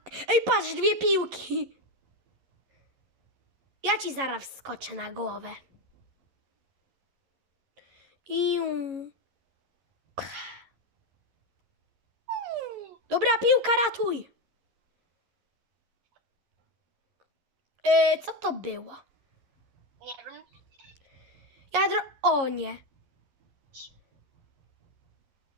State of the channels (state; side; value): late; left; 11 ms